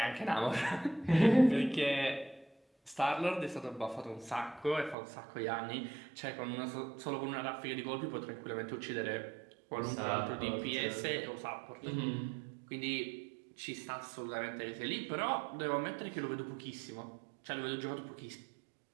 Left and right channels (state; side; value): drops out; left; at 5.0 s